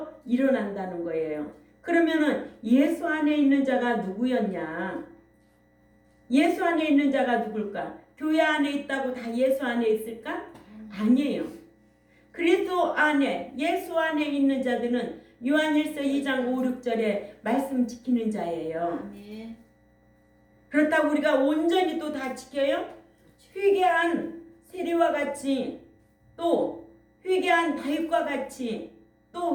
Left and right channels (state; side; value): identical; both; correlation 1.00